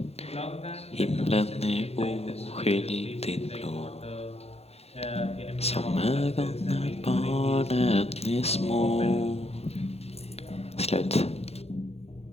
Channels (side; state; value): right; late; 0.30 ms